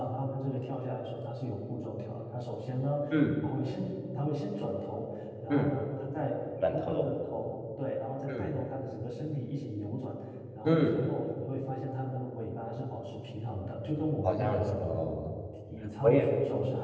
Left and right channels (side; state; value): both; identical; correlation 1.00